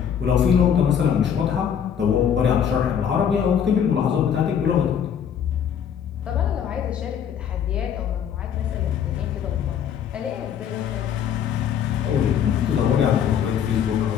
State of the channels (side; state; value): right; quieter; 8.4 dB